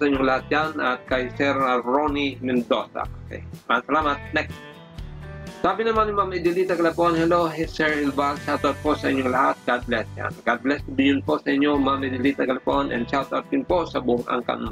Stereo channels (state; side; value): identical; both; correlation 1.00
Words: inyong lahat yan at kay Sir Ronnie Mendoza. Okay. Maraming salamat. Next. Sabi naman ni Ma'am Edelita Galapon, hello Sir Hilbal. Shoutout po sa inyong lahat. God bless yan. God bless din po sa inyo Ma'am Edelita Galapon and shoutout din po sa buong angkan